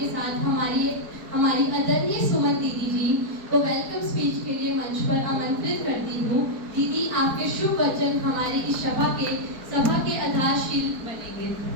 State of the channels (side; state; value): left; late; 4.6 ms